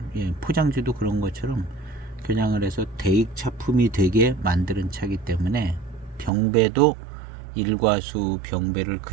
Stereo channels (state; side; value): drops out; left; at 6.3 s